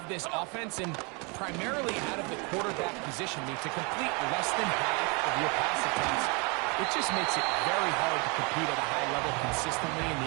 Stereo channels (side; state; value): left; quieter; 31.6 dB